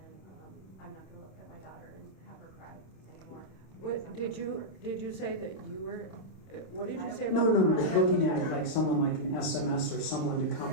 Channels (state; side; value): late; right; 27 ms